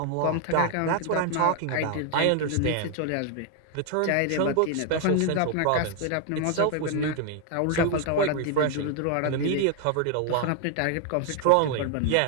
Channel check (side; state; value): both; different; correlation 0.00